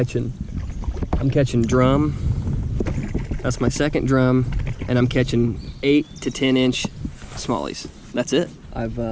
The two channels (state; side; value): identical; both; correlation 1.00